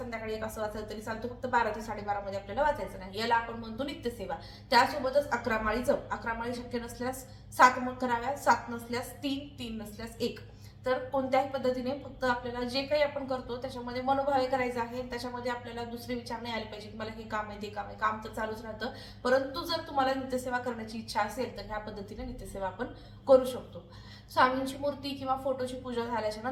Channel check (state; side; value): identical; both; correlation 1.00